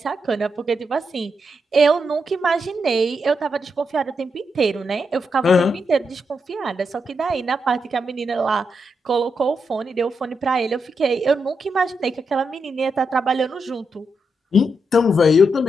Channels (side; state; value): both; normal; correlation 0.83